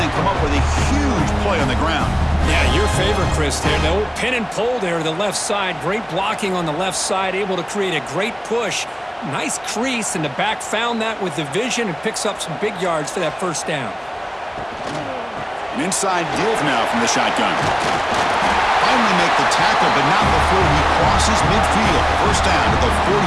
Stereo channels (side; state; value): both; identical; correlation 1.00